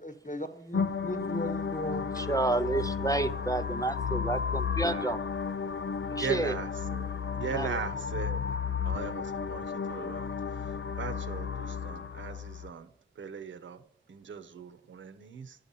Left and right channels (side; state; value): both; normal; correlation 0.35